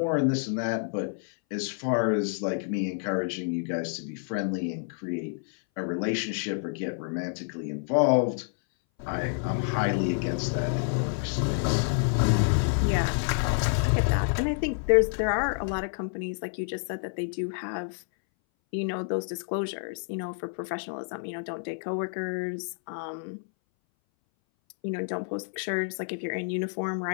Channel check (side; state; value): right; silent; 59 dB below the other